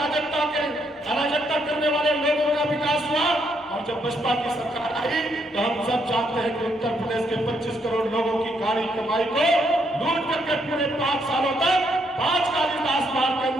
करने वाले लोगों का विकास हुआ। और जब बसपा की सरकार आई तो हम सब जानते हैं कि उत्तर प्रदेश के 25 करोड़ लोगों की गाड़ी कमाई को लूट करके पूरे 5 सालों तक 5 कालिदास मार्ग के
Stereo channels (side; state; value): both; normal; correlation 0.74